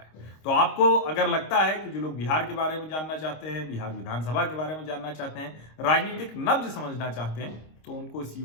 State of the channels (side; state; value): right; late; 26 ms